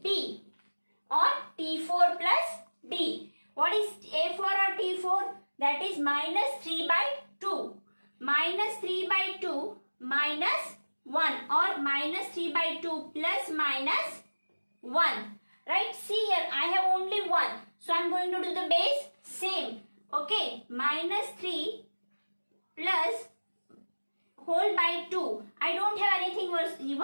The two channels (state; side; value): inverted; both; correlation -1.00